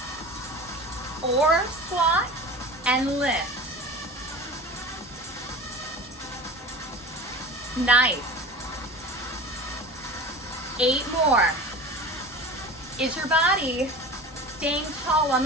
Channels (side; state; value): both; normal; correlation 0.34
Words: or squat, and lift. Nice. 8 more. Is your body Staying tall on